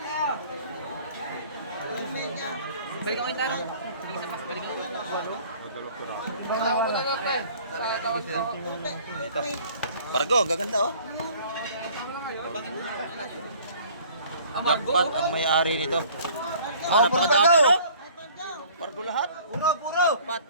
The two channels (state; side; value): inverted; both; correlation -0.52